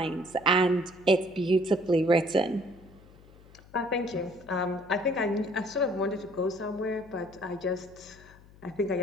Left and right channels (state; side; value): noise; left; hum, 23 dB below the sound